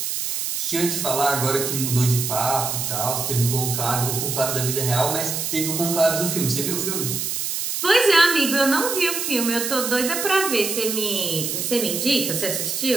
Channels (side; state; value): right; noise; hiss, 2 dB below the sound